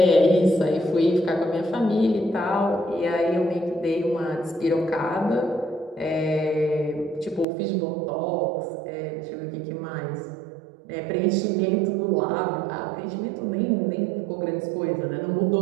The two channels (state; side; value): drops out; left; at 7.5 s